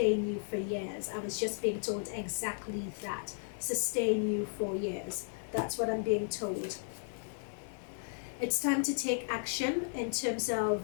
you for years. I was just being told exactly that. Sustain you for years. That's what I'm being told. It's time to take action in terms of,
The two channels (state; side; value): silent; right; digital silence